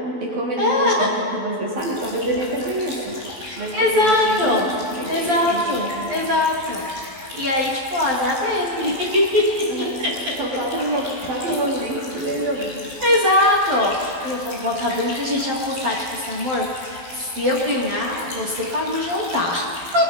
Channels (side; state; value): left; late; 11 ms